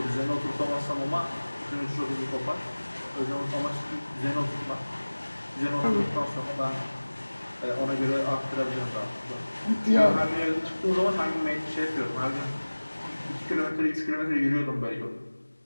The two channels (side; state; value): both; inverted; correlation -1.00